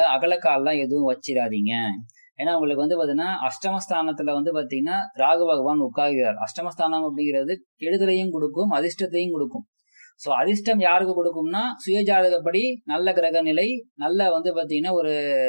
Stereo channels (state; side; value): inverted; both; correlation -1.00